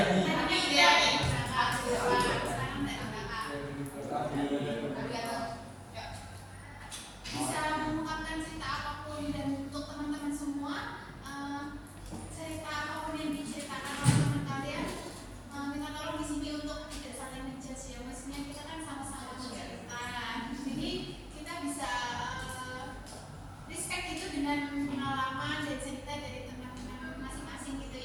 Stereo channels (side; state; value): both; identical; correlation 1.00